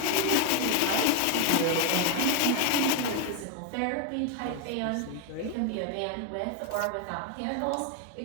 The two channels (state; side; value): different; both; correlation 0.01